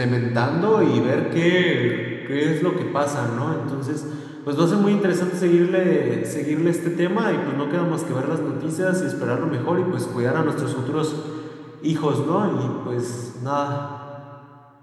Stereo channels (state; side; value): identical; both; correlation 1.00